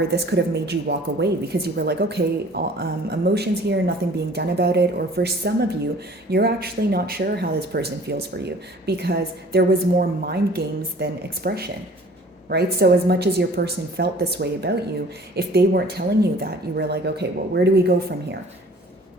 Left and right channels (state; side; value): normal; both; correlation 0.50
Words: this could have made you walk away because you were like, okay, emotions here, nothing being done about it. Or for some of you, you're actually not sure how this person feels for you because there was more mind games than expression, right? So as much as your person felt this way about you, if they weren't telling you that, you were like, okay, well, where do we go from here?